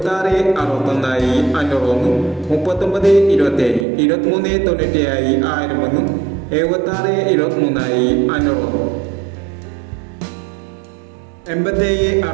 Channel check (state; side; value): drops out; left; at 3.9 s